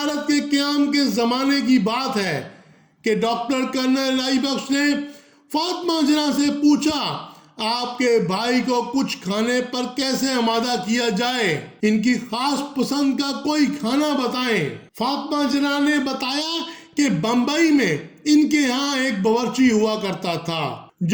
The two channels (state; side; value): identical; both; correlation 1.00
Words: کے قیام کے زمانے کی بات ہے کہ ڈاکٹر کرنل الہی بخش نے فاطمہ جناح سے پوچھا، آپ کے بھائی کو کچھ کھانے پر کیسے آمادہ کیا جائے، ان کی خاص پسند کا کوئی کھانا بتائیں۔ فاطمہ جناح نے بتایا کہ بمبئی میں ان کے ہاں ایک باورچی ہوا کرتا تھا